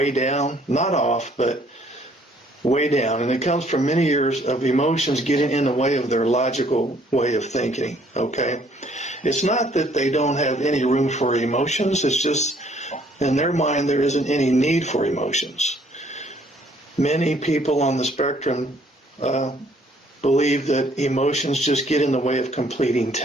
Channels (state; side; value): normal; both; correlation 0.62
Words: down, not off, but way down. And it comes from many years of emotions getting in the way of their logical way of thinking, okay? It's not that they don't have any room for emotions. It's just in their mind there isn't any need for emotions. Many people on the spectrum believe that emotions just get in the way of completing